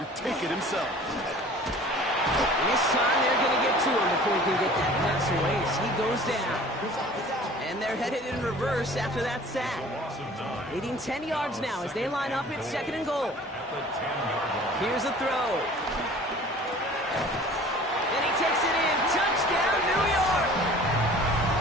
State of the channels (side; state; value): both; normal; correlation 0.47